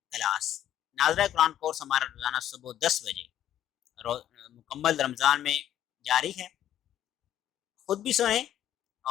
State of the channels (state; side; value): quieter; right; 11.2 dB